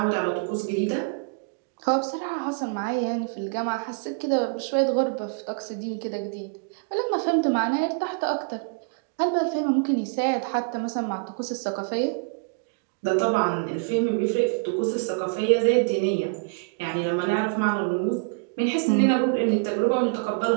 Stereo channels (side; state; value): left; quieter; 36.0 dB